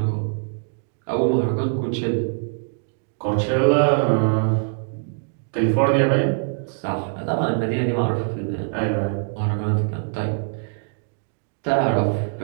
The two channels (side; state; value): left; silent; digital silence